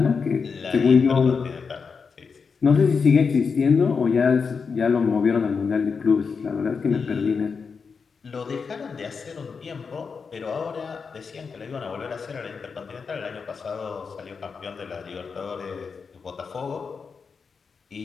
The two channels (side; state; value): right; quieter; 5.4 dB